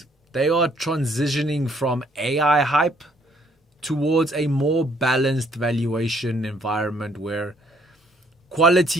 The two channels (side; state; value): both; normal; correlation 0.65